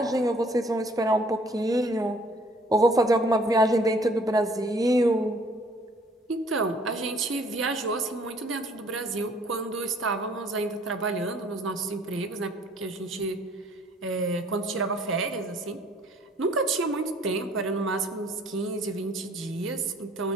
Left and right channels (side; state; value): both; normal; correlation 0.58